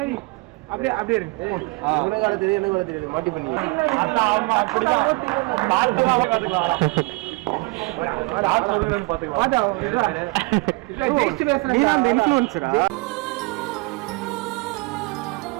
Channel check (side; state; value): left; quieter; 26.4 dB